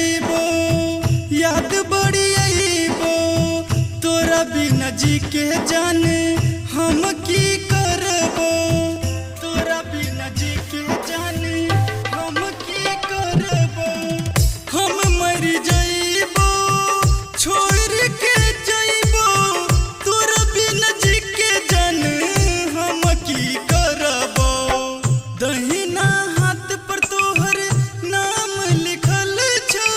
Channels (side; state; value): both; identical; correlation 1.00